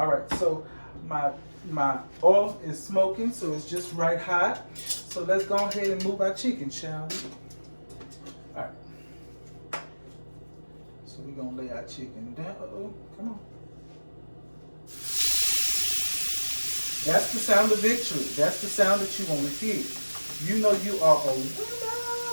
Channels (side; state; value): both; inverted; correlation -1.00